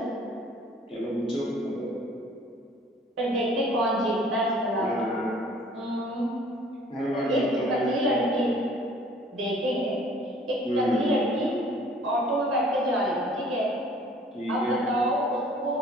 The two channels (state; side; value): normal; both; correlation 0.54